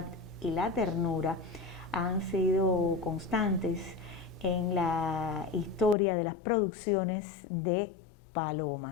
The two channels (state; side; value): drops out; right; at 6.0 s